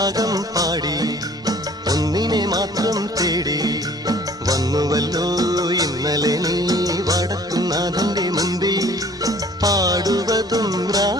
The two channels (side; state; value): both; normal; correlation 0.53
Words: രാഗം പാടി ഒന്നിനെ മാത്രം തേടി വന്നുവല്ലോ ഇന്നലെ നീ വടക്കുന്നാഥന്റെ മുമ്പിൽ പാടുവതും